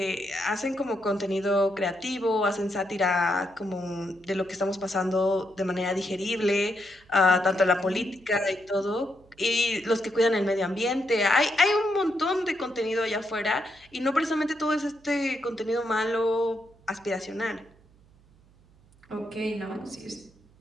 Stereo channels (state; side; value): noise; right; hum, 29 dB below the sound